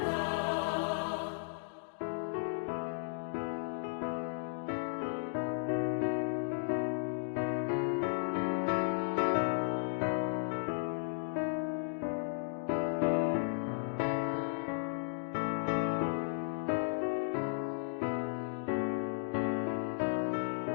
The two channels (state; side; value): silent; right; digital silence